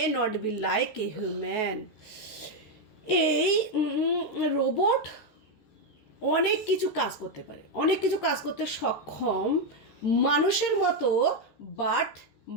not be like a human. এই রোবট অনেক কিছু কাজ করতে পারে, অনেক কিছু কাজ করতে সক্ষম মানুষের মতো, বাট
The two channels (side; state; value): right; late; 14 ms